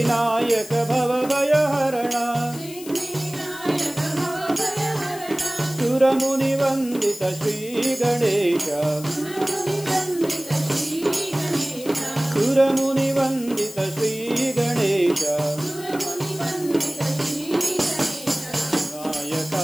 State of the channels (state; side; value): noise; left; hiss, 15 dB below the sound